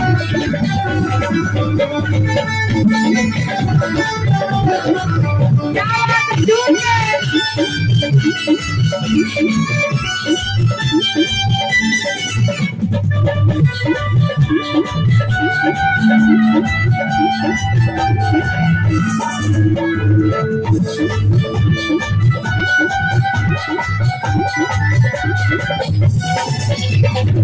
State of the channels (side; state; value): both; identical; correlation 1.00